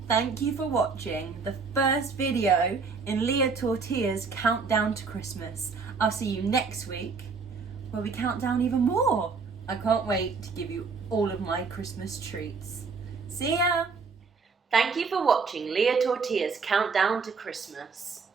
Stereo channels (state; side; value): quieter; left; 4.9 dB